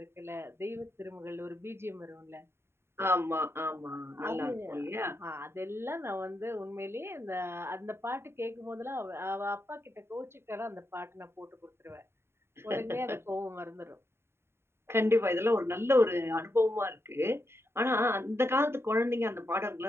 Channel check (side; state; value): left; late; 0.12 ms